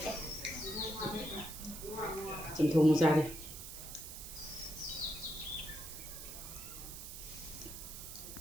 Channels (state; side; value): noise; right; hiss, 10 dB below the sound